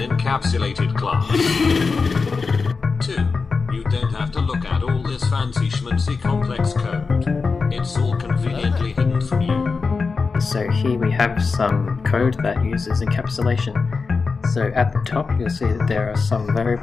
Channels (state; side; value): quieter; right; 4.6 dB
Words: encapsulated class. 2. You don't have to look at all this fancy schmancy complex code. It's all conveniently hidden from you. So here we have some code that uses encapsulation. So at the top you'll see that there are some